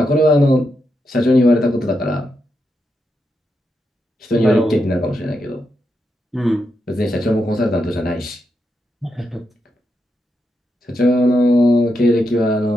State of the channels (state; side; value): normal; both; correlation 0.84